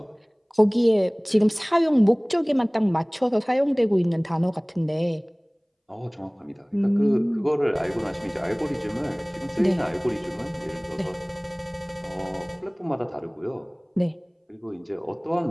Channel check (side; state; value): both; identical; correlation 1.00